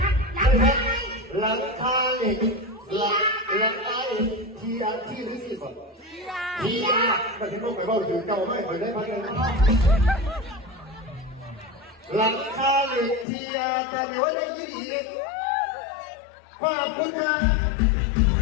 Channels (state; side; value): drops out; right; at 13.2 s